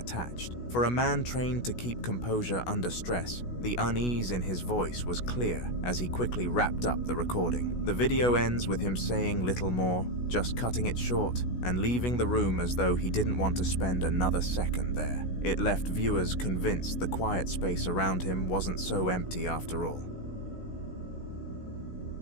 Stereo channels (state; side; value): late; right; 16 ms